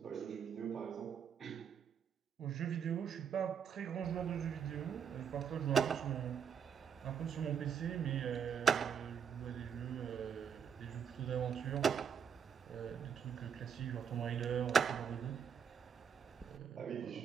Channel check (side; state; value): left; quieter; 7.5 dB